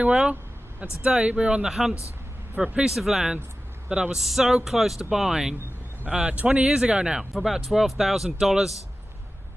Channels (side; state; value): both; normal; correlation 0.94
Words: well. And today we're on the hunt for a piece of land that I was so close to buying 20 years ago now for about $12,000.